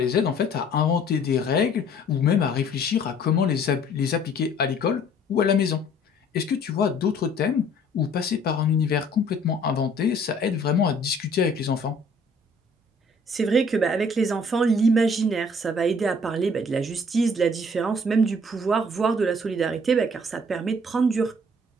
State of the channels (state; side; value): normal; both; correlation 0.56